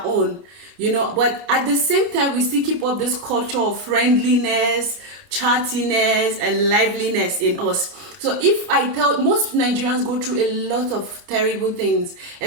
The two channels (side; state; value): left; late; 29 ms